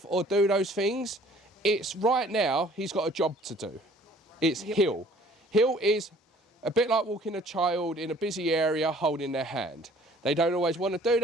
or do those things. It's right now, he's got a job to do. It's hill. Hill is a bit like walking a child in a busy area holding their hand. They don't always want to do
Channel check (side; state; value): both; normal; correlation 0.55